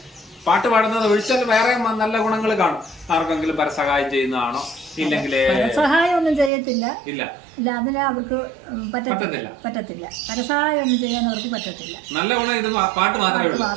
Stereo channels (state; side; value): drops out; left; at 6.5 s